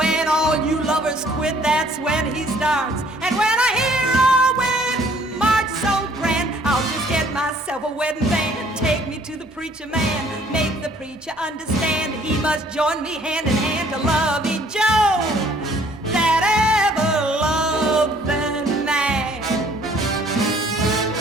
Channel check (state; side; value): normal; both; correlation 0.59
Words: all you lovers quit, that's when he starts. And when I hear a wedding march so grand, I'll just get myself a wedding band. Take me to the preacher man, make the preacher understand. He must join me hand in hand to lovey Joe, that ever-loving man.